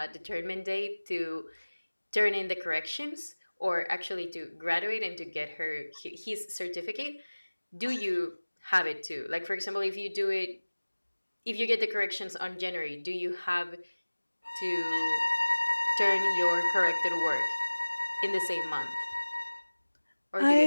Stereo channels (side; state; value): both; inverted; correlation -1.00